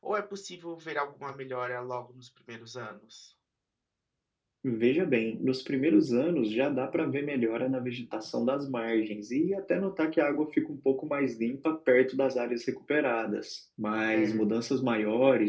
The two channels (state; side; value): identical; both; correlation 1.00